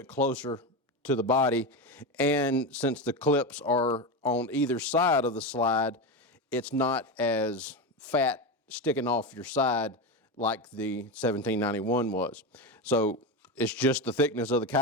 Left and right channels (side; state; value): both; normal; correlation 0.17